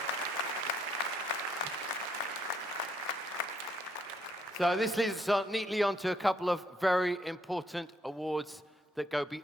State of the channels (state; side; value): normal; both; correlation 0.71